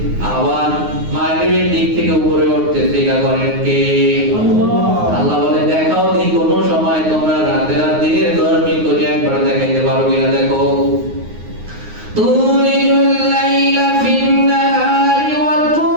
আবার মাগরিবের দিক থেকে উপরে উঠতেছে। এটা করেন কে? আল্লাহ বলে দেখাও দি কোন সময় তোমরা রাতে আর দিনের গরমি করে একবার দেখাইতে পারো কিনা দেখো। তুলিজুল লাইলা ফিন নাহারি ওয়া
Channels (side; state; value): left; late; 9.5 ms